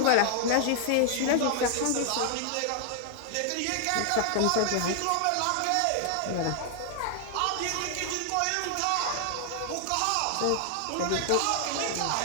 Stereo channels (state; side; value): different; both; correlation 0.00